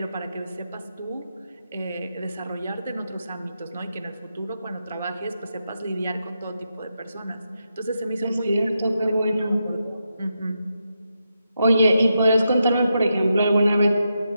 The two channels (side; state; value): both; inverted; correlation -0.85